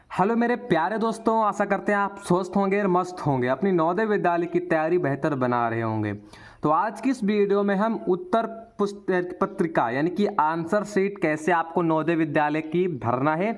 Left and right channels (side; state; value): both; identical; correlation 1.00